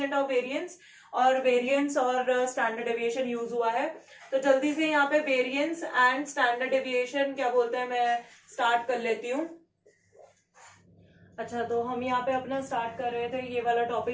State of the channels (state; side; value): identical; both; correlation 1.00